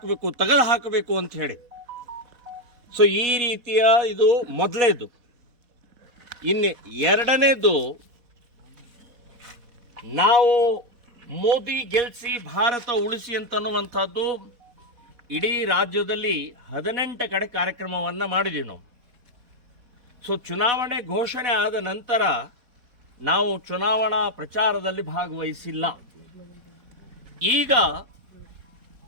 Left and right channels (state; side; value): late; left; 4.1 ms